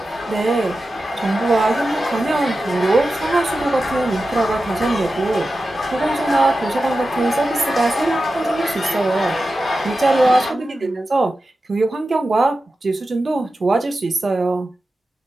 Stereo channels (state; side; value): normal; both; correlation 0.93